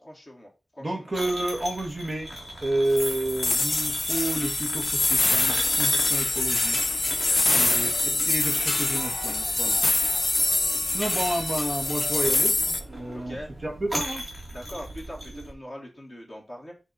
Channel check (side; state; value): both; normal; correlation 0.96